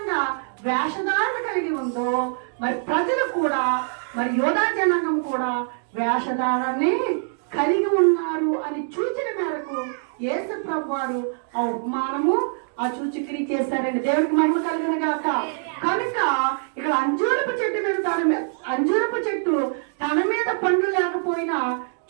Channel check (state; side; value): silent; left; 63 dB below the other